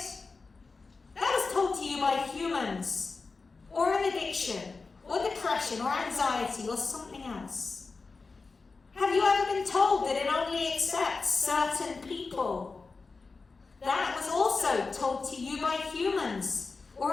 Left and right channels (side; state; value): right; quieter; 4.2 dB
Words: That was told to you by humans, or an addiction, or depression, or anxiety, or something else. Have you ever been told that it only accepts certain people? That was also told to you by humans, or